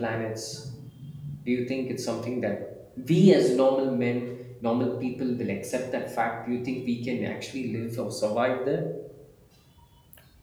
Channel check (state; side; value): identical; both; correlation 1.00